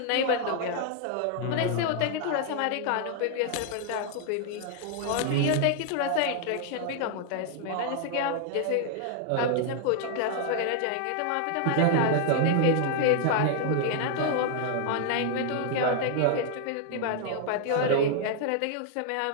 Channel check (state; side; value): different; both; correlation 0.00